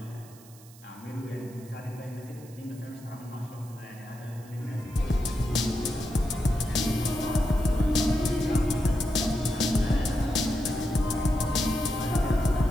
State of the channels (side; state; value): right; noise; hiss, 23 dB below the sound